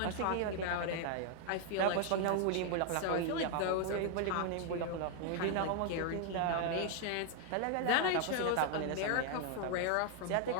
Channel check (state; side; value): different; both; correlation 0.00